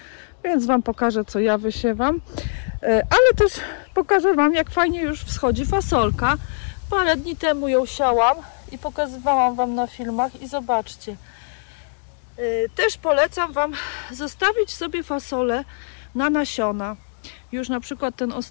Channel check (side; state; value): right; silent; digital silence